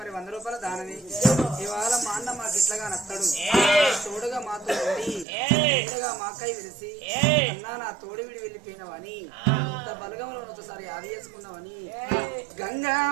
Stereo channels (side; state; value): left; drops out; at 5.2 s